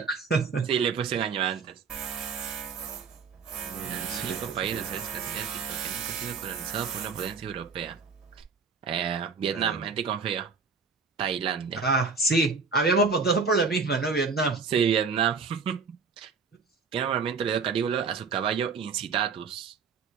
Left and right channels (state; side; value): quieter; left; 5.0 dB